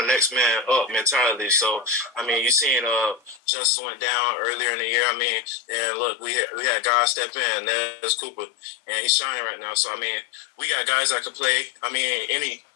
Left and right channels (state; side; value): drops out; right; at 3.4 s